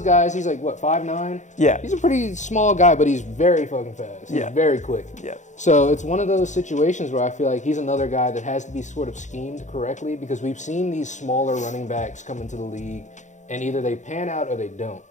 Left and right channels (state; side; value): late; right; 0.35 ms